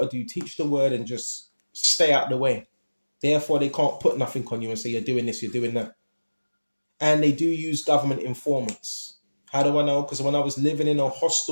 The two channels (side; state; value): both; inverted; correlation -1.00